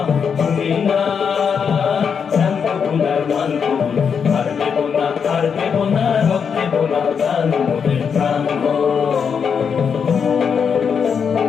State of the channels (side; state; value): right; quieter; 6.6 dB